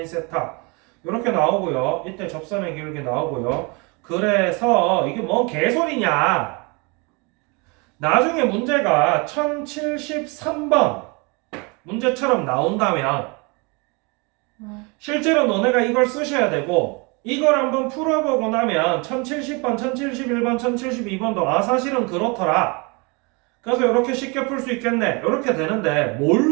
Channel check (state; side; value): quieter; left; 29.8 dB